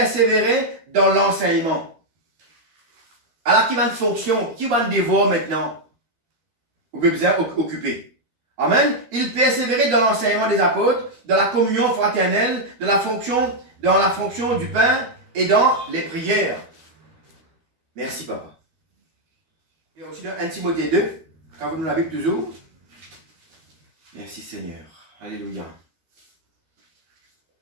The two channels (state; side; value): late; left; 12 ms